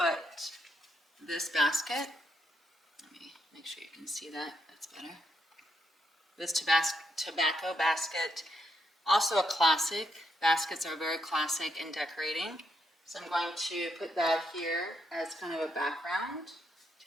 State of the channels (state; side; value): normal; both; correlation 0.79